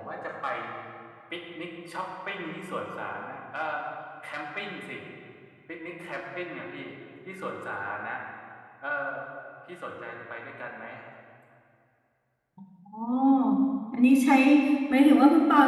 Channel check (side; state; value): both; identical; correlation 1.00